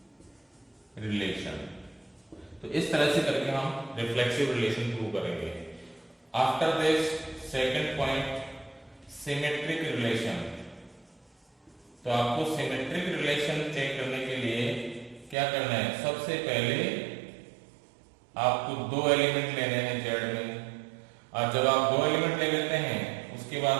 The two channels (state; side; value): drops out; left; at 15.4 s